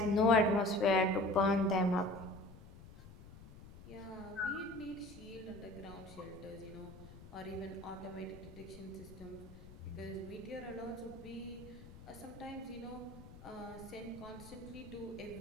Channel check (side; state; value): left; noise; rumble, 17 dB below the sound